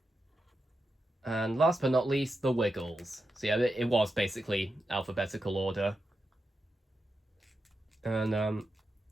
And last but not least, the Wiggles. So yeah, it was basically alphabetical order. And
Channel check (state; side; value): normal; both; correlation 0.88